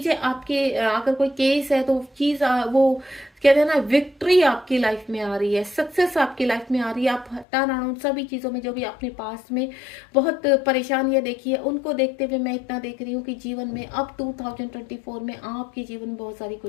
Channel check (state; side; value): drops out; right; at 7.5 s